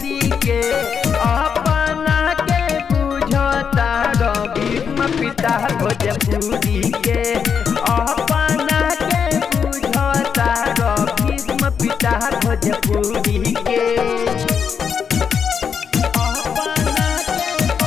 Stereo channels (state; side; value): quieter; right; 6.8 dB